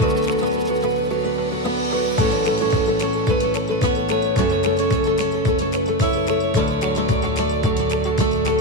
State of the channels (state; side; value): normal; both; correlation 0.15